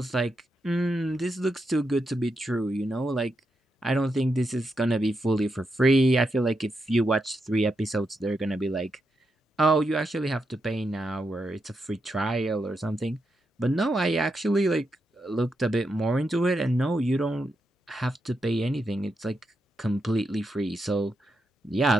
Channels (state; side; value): normal; both; correlation 0.84